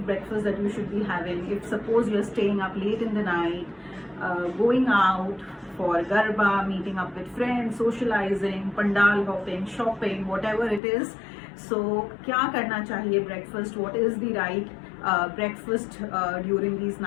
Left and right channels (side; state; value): right; drops out; at 10.8 s